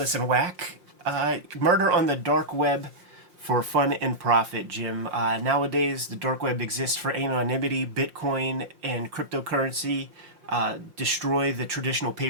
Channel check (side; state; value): left; late; 5.6 ms